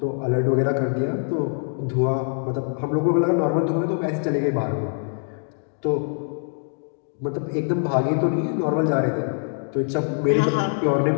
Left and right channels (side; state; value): right; silent; 63 dB below the other